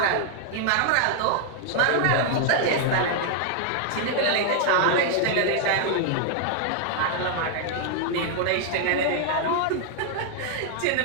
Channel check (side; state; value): both; different; correlation 0.00